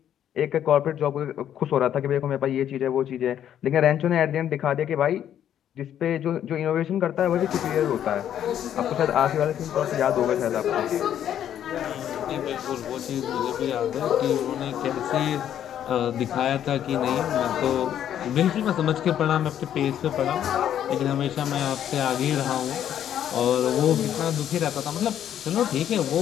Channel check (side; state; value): right; quieter; 10.3 dB